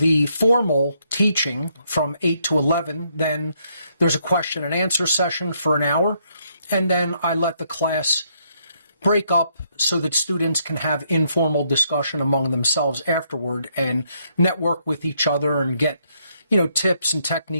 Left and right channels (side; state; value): both; inverted; correlation -0.73